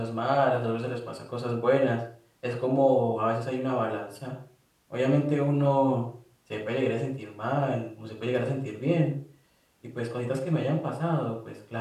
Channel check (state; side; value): identical; both; correlation 1.00